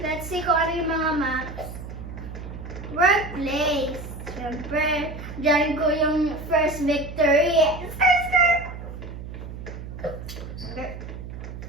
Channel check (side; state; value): right; noise; hum, 10 dB below the sound